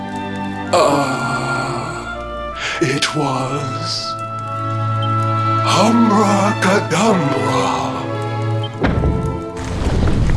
it was... Humbracadabra.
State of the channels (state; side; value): identical; both; correlation 1.00